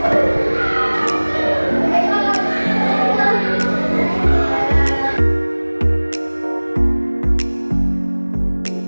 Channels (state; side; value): inverted; both; correlation -1.00